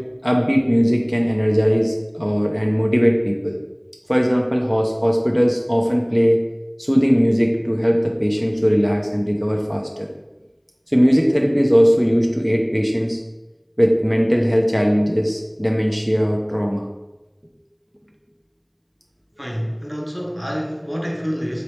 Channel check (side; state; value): both; identical; correlation 1.00